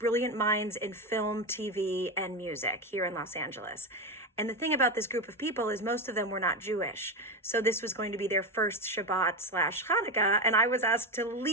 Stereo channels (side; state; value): both; normal; correlation 0.15